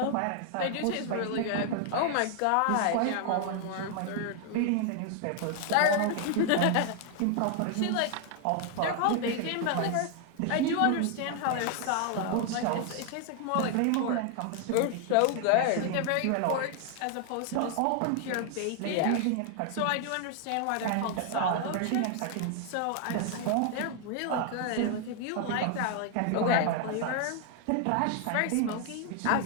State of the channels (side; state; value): both; different; correlation 0.00